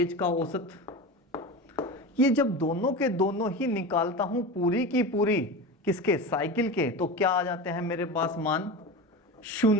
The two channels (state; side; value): normal; both; correlation 0.27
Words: का औसत, ये जब दोनों के दोनों ही निकालता हूं पूरी की पूरी किसके, साइकिल के, तो क्या आ जाते हैं मेरे पास मान,